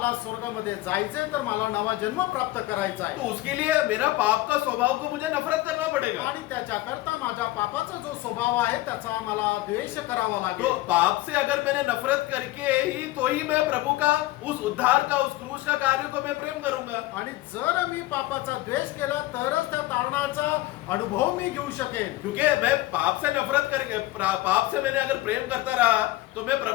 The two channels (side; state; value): right; quieter; 17.8 dB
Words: स्वर्गामध्ये जायचंय तर मला नवा जन्म प्राप्त करायचा आहे। तो उसके लिए मेरा पाप का स्वभाव को मुझे नफरत करना पड़ेगा। आणि त्याच्याकरता माझ्या पापाचा जो स्वभाव आहे त्याचा मला द्वेष करावा लागेल। तो पाप से अगर मैंने नफरत करके ही तो ही मैं प्रभु का उस उद्धार का उस क्रूस का कार्य को मैं प्रेम करूंगा। आणि जर मी पापाचा द्वेष केला तरच त्या तारणाचा अनुभव मी घेऊ शकेल। क्योंकि मैं पाप से नफरत करके पाप से मैंने अगर प्रेम करता रहा तो मैं